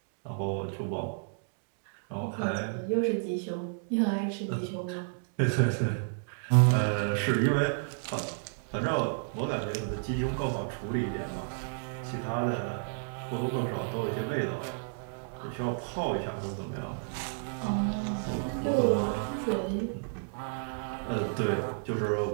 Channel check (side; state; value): left; silent; digital silence